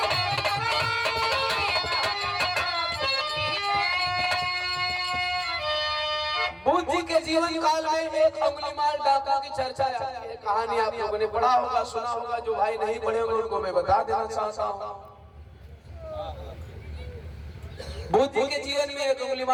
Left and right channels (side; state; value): both; identical; correlation 1.00